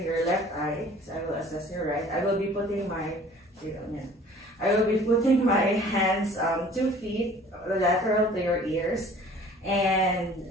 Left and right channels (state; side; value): normal; both; correlation 0.50